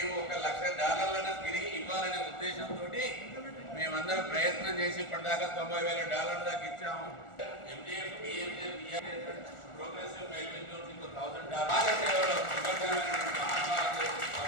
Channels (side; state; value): right; late; 1.4 ms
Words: $1 లక్ష తిరిగి ఇవ్వాలనే ఉద్దేశంతో మేమందరం ప్రయత్నం చేసి ఇప్పటిదాకా $90,000 దాకా ఇచ్చాము. ఎంజీఎఫ్, ప్రోగ్రెసివ్ మెయిల్ జోన్స్ ఇంకో $1,000